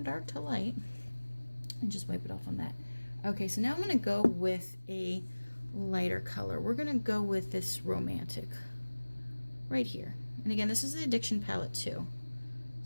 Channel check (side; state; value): both; inverted; correlation -1.00